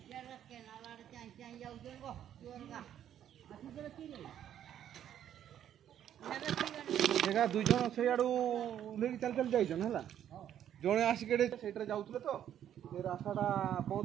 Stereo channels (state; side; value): quieter; left; 10.4 dB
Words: देखा दुई जन से आड़ू उल्लेख चल चल जाइछन हला जणे आसिकेडे सेटरे जाउतले तो से रास्ताटा